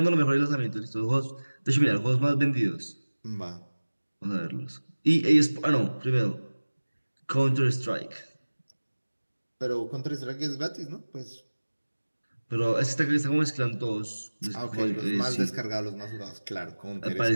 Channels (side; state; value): both; inverted; correlation -1.00